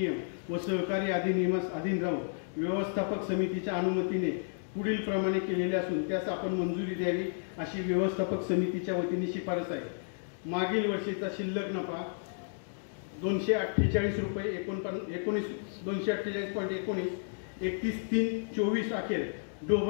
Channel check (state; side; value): silent; right; digital silence